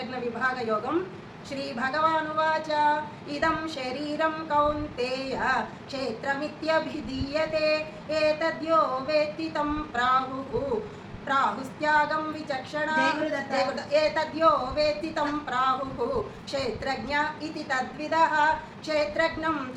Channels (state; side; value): identical; both; correlation 1.00